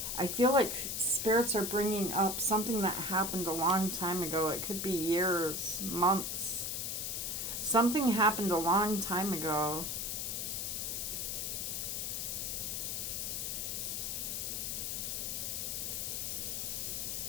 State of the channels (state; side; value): noise; left; hiss, 2 dB below the sound